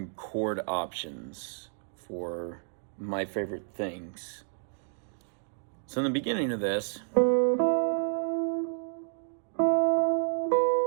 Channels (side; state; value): left; silent; digital silence